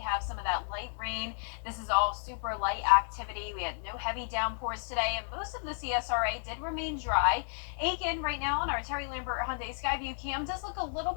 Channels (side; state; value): right; silent; digital silence